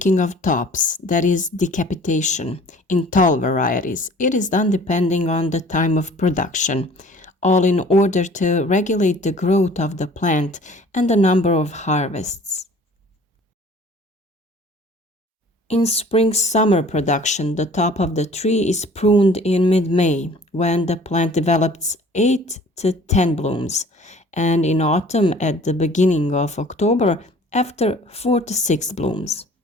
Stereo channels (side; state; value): both; normal; correlation 0.50